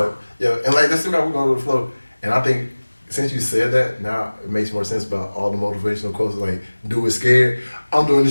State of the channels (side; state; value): both; inverted; correlation -1.00